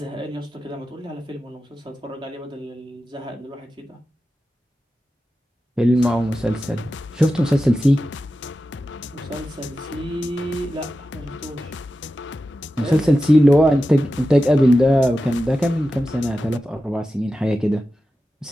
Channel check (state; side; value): normal; both; correlation 0.92